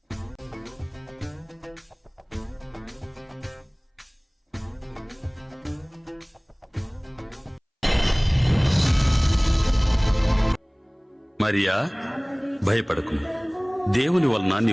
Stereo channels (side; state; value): both; identical; correlation 1.00